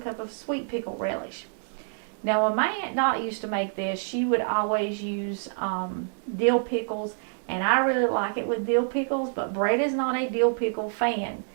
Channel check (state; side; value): silent; left; digital silence